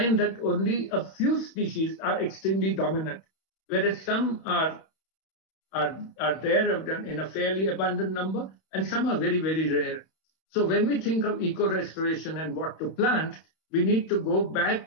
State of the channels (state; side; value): late; right; 31 ms